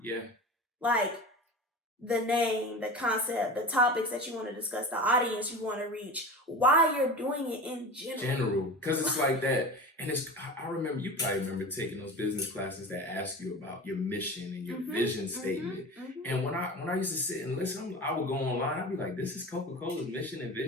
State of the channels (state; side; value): normal; both; correlation 0.32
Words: Yeah. Like, the name, the concept, the topics that you want to discuss, the audience you want to reach, why you're doing it in general. Because it's like that. And I remember, you probably remember taking those business classes that ask you about your mission and your vision statement. And when I used to sit and listen, I would go online, I'd be like, this is Coca-Cola's mission and